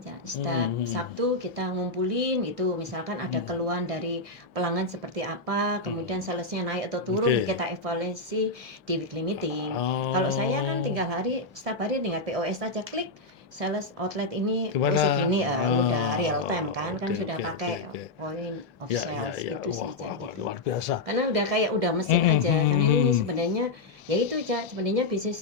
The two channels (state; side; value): quieter; right; 3.2 dB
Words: ya. Setiap Sabtu kita ngumpulin itu, misalkan ada keluhan dari pelanggan seperti apa, kemudian salesnya naik atau turun, kita evaluasi di weekly meeting. Kalau saya kan setiap hari tinggal POS aja, klik sales outlet ini segini, udah real time kan sudah pakai point of sales itu saja gitu. Luar biasa. Karena udah mesin aja. Karena ini sebenarnya ya itu aja, sebenarnya bisnis